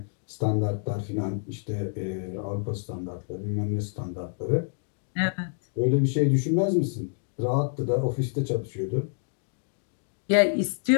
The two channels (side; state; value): right; silent; 60 dB below the other